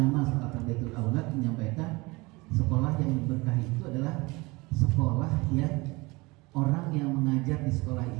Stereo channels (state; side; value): quieter; left; 24.0 dB